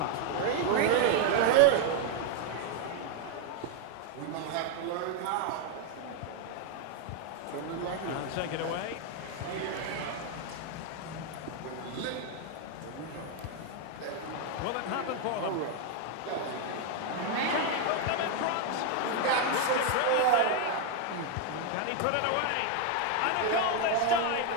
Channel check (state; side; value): different; both; correlation 0.01